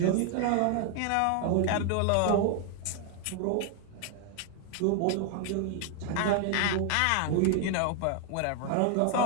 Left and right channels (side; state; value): both; different; correlation 0.00